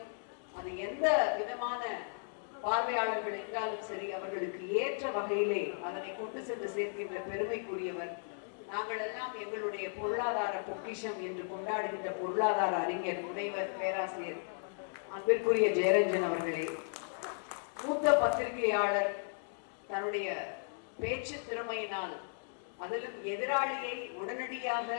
அது எந்த விதமான பார்வையாளர்கள் என்றாலும் சரி அவர்களுக்கு ஏற்ற வகையிலே அதனை கொண்டு சென்று சேர்க்கின்ற பெருமைக்குரியவர். நாங்கள் எல்லாம் எங்களுடைய பொருளாதார பொக்கிஷம் என்று கொண்டாடுகின்ற பொருளாதார அறிஞர் முனைவர் பேராசிரியர் அன்பிற்குரிய ஜெயரஞ்சன் அவர்களே, மூத்த பத்திரிகையாளர், தன்னுடைய பேச்சு திறமையினால் அதிலும் எதிராளியை உடனடியாக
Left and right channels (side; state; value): right; silent; digital silence